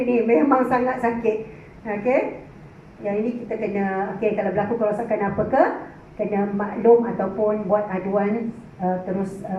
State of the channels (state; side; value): identical; both; correlation 1.00